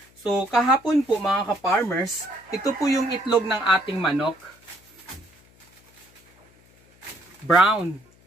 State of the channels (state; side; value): noise; left; hum, 30 dB below the sound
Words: So kahapon po mga ka-farmers, ito po yung itlog ng ating manok. Brown.